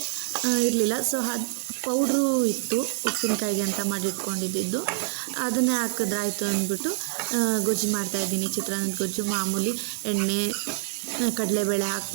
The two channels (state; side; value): silent; left; 61 dB below the other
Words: ಇರಲಿಲ್ಲ. ಸೊ ಅದು ಪೌಡ್ರು ಇತ್ತು ಉಪ್ಪಿನಕಾಯಿಗೆ ಅಂತ ಮಾಡಿಟ್ಕೊಂಡಿದ್ದು, ಅದನ್ನೇ ಹಾಕಿದ್ರಾಯ್ತು ಅಂದ್ಬಿಟ್ಟು ಗೊಜ್ಜು ಮಾಡ್ತಾಯಿದ್ದೀನಿ. ಚಿತ್ರಾನ್ನದ ಗೊಜ್ಜು ಮಾಮೂಲಿ ಎಣ್ಣೆ, ಕಡಲೆಬೇಳೆ